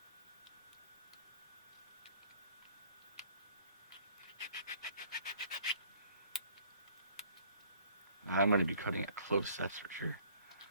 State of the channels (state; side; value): inverted; both; correlation -0.58